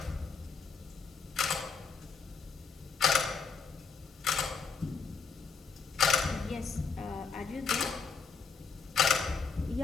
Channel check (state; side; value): quieter; right; 5.1 dB